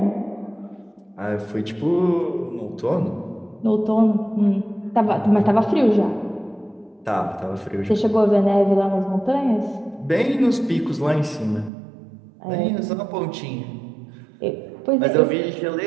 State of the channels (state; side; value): drops out; left; at 11.7 s